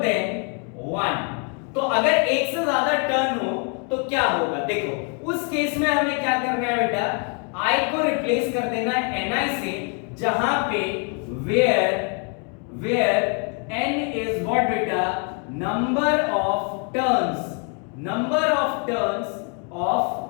1। तो अगर एक से ज्यादा टर्न हो तो क्या होगा? देखो उस केस में हमें क्या करना है बेटा, I को रिप्लेस कर देना है Ni से, जहां पे where N is what बेटा number of turns of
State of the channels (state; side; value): quieter; right; 38.6 dB